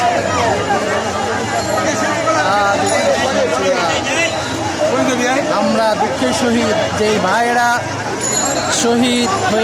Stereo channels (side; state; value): both; identical; correlation 1.00